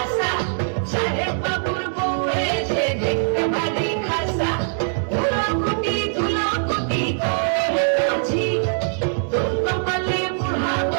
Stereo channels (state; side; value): silent; left; digital silence